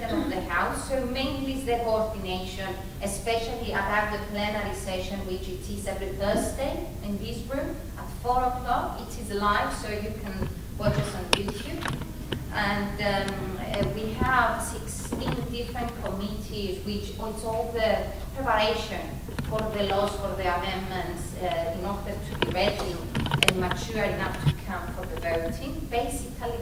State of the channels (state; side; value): identical; both; correlation 1.00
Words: of the House, so mainly is the coordination, especially about the plenary session, which it is every Thursday in this room at 4 o'clock. It is live, so you can watch us on YouTube. And we have 16 different committees, which it's all the preparation for the laws, for the amendments, in order to be ready and mature enough to come for the voting. Basically,